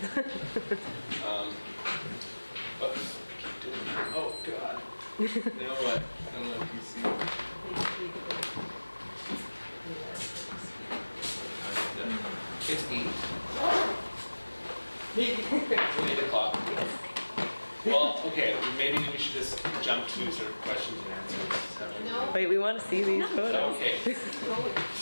But keep doing that. Oh, God. You know what? I don't know if you see. It's 8. It's 8 o'clock. Well, okay, maybe we should just jump to sort of questions and answers. No. Wait, we want to see these photos. Okay.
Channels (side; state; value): both; inverted; correlation -1.00